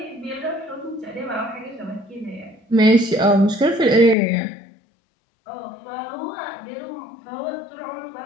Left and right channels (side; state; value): right; drops out; at 4.2 s